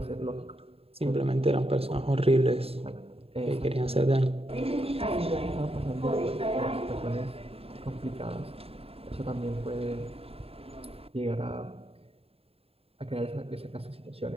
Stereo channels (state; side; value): late; left; 0.28 ms